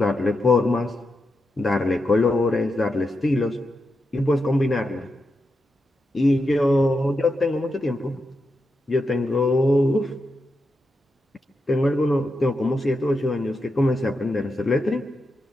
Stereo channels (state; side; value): normal; both; correlation 0.86